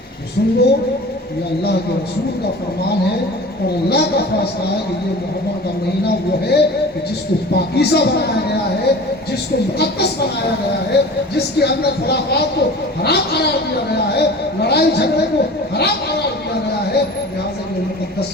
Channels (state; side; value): normal; both; correlation 0.39